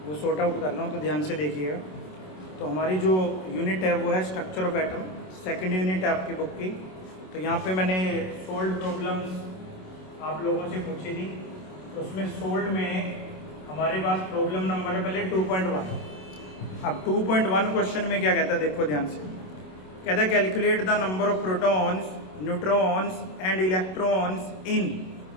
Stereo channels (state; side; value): late; right; 27 ms